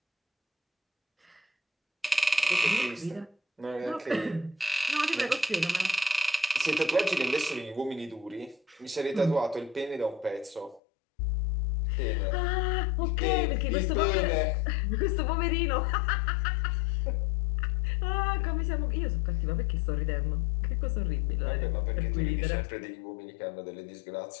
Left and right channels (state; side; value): drops out; right; at 10.8 s